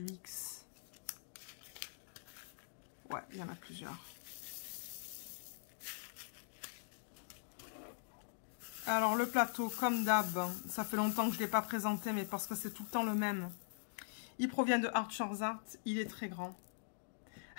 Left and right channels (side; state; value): right; silent; digital silence